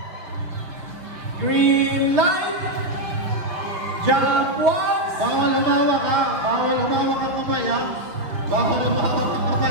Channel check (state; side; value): late; left; 5.8 ms